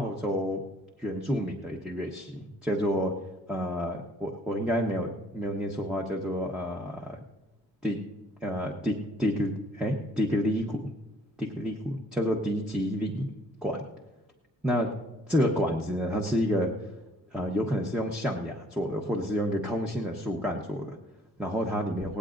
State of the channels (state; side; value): normal; both; correlation 0.61